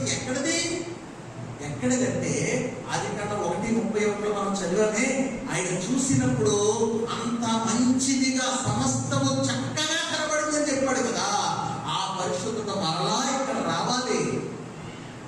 ఎక్కడిదంటే అది కన్నా 1:31 మనం చదివామే. ఆయన చూసినప్పుడు అంత మంచిదిగా సమస్తము చక్కగా కనబడిందని చెప్పాడు కదా. ఆ పరిశుద్ధత మరలా ఇక్కడ రావాలి.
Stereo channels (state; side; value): identical; both; correlation 1.00